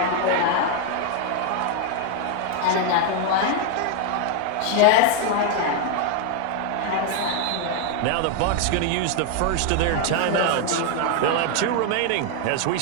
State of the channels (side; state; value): both; different; correlation 0.00